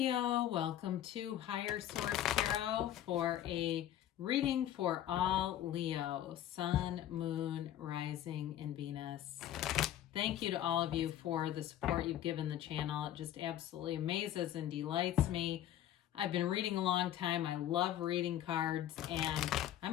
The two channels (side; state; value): right; quieter; 11.9 dB